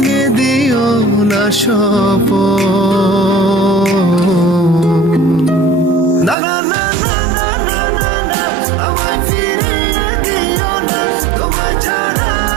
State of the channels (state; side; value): drops out; left; at 6.4 s